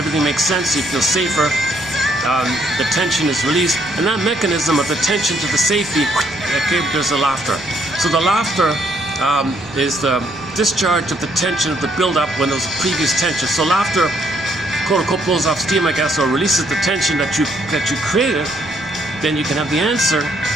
makes sense, you feel safer. The tension is released, and that mechanism of the tension to the safety, okay, there's the laughter. So the laughter is the discharge of the tension of the build-up when there was previous tension. So laughter, quote-unquote, blows off steam, I guess, or releases the tension that you created. Then you can have the answer.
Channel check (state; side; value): noise; left; rumble, 21 dB below the sound